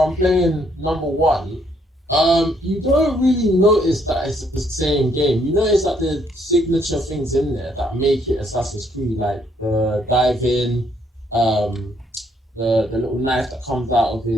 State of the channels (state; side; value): normal; both; correlation 0.70